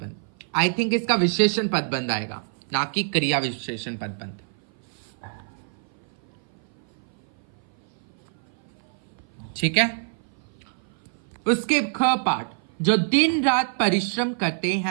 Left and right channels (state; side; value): silent; left; 56 dB below the other